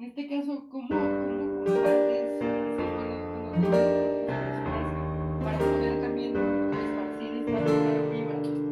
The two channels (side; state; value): both; identical; correlation 1.00